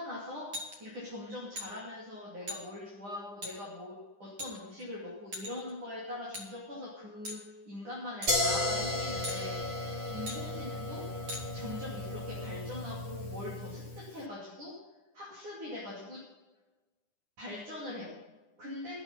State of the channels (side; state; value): left; late; 9.9 ms